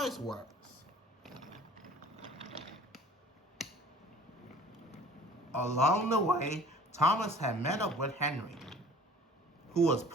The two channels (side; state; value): both; normal; correlation 0.48